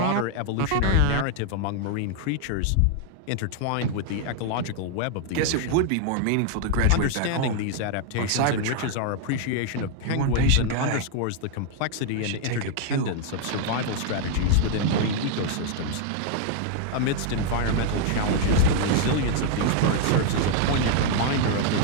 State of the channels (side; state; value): both; different; correlation 0.00